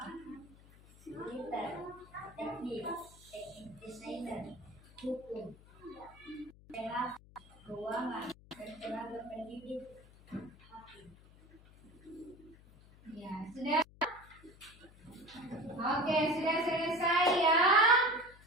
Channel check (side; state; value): left; noise; hum, 23 dB below the sound